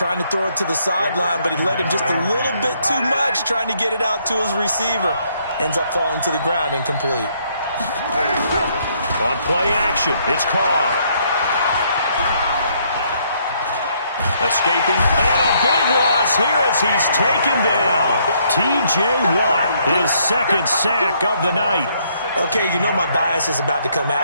to throw it to the sideline, but he led him just a little bit too much, trying to get it out to his receiver. Ends up falling to the ground, incomplete. On play action, it's Carr. Escaping, and a big loss here as he's taken down. T.J. Watt, his second sack of the night. Okay, my bias is about to come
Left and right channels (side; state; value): both; inverted; correlation -0.69